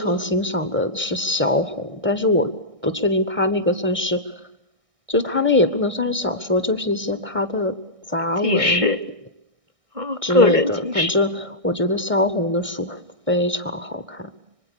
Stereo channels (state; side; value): late; left; 1.6 ms